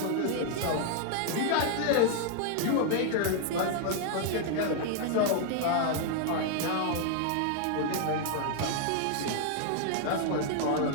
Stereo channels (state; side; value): different; both; correlation 0.00